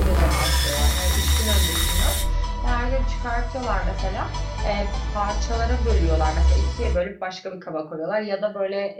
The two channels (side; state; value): both; identical; correlation 1.00